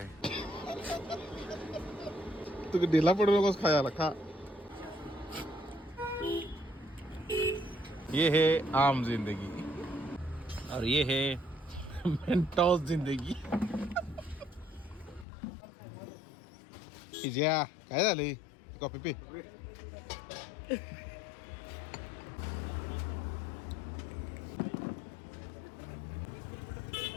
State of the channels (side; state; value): right; drops out; at 15.2 s